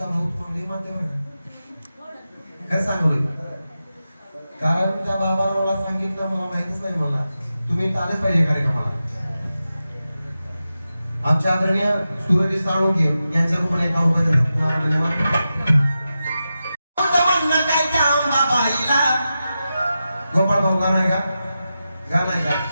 भाऊ तुम्हाला मानते बरं काय सांगू कारण त्या बाबाला मला सांगितलं मला माहितीच नाही मला तुम्ही आलेच पाहिजे कार्यक्रमाला आमच्या आदरणीय सूरज साळुंके यांच्या रूपाने एका गोपाळ भाऊ गाणं आहे का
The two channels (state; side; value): inverted; both; correlation -0.91